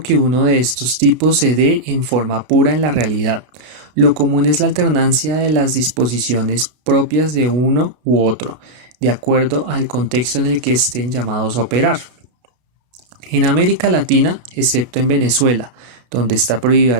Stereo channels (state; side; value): late; left; 33 ms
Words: uno de estos tipos se dé en forma pura en la realidad. Lo común es la alternancia de las disposiciones propias de uno u otro, de acuerdo al contexto en el que estén llamados a operar. En América Latina, excepto en Venezuela, donde está